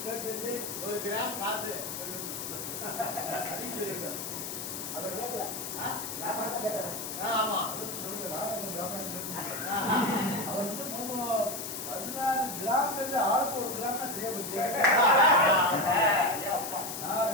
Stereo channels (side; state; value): left; noise; hiss, 6 dB below the sound